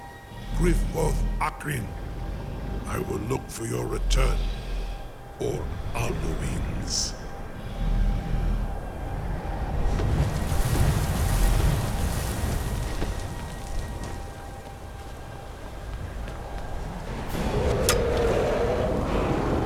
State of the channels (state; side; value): identical; both; correlation 1.00